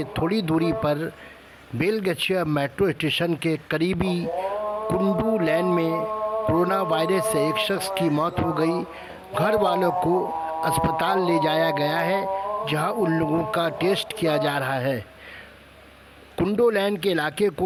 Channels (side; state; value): both; identical; correlation 1.00